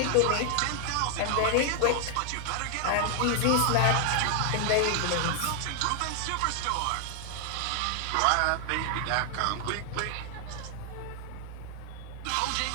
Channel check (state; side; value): different; both; correlation 0.00